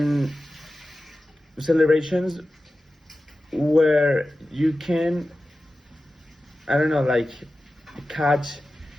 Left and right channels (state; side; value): normal; both; correlation 0.95